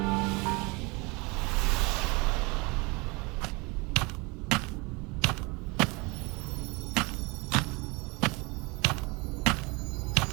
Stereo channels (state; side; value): quieter; left; 26.8 dB